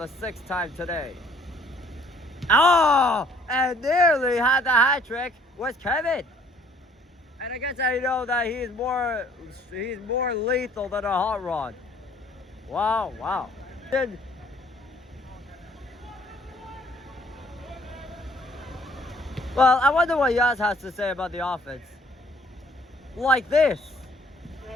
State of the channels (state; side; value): normal; both; correlation 0.59